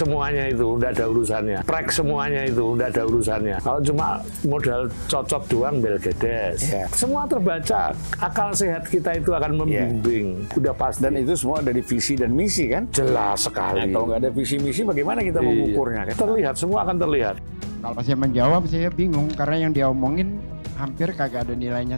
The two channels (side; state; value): both; inverted; correlation -1.00